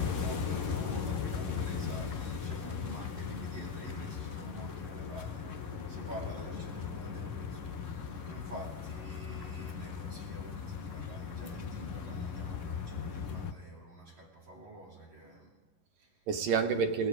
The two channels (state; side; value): late; left; 11 ms